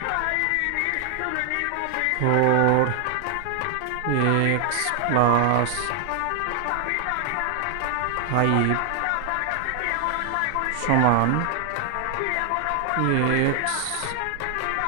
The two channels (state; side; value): different; both; correlation 0.00